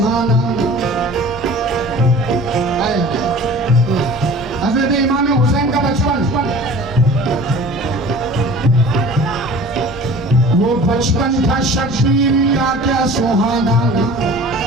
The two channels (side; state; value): both; normal; correlation 0.43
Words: हजरत इमाम हुसैन का बचपन, वो बचपन था शब्बीर का क्या सुहाना